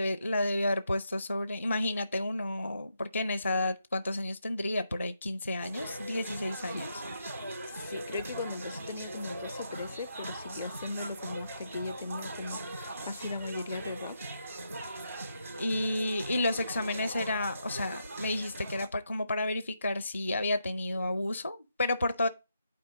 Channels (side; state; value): both; inverted; correlation -0.81